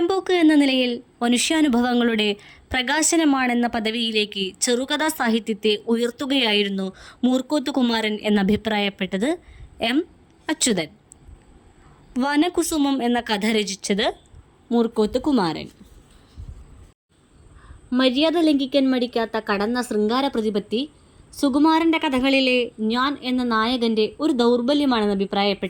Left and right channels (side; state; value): both; identical; correlation 1.00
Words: എന്ന നിലയിൽ മനുഷ്യാനുഭവങ്ങളുടെ പ്രകാശനമാണെന്ന പദവിയിലേക്ക് ചെറുകഥാ സാഹിത്യത്തെ ഉയർത്തുകയായിരുന്നു മൂർക്കോത്ത് കുമാരൻ എന്നഭിപ്രായപ്പെട്ടത് M അച്യുതൻ. വനകുസുമം എന്ന കഥ രചിച്ചത് മൂർക്കോത്ത് കുമാരൻ. മര്യാദ ലംഘിക്കാൻ മടിക്കാത്ത കടന്ന ശൃംഗാര പ്രതിപത്തി സുകുമാരൻ്റെ കഥകളിലെ ഞാൻ എന്ന നായകൻ്റെ ഒരു ദൗർബല്യമാണെന്ന്